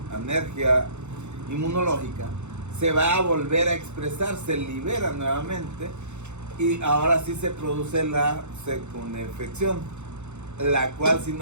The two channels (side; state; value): left; late; 0.83 ms